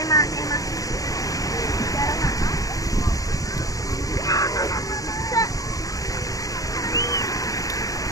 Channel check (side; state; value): right; late; 0.17 ms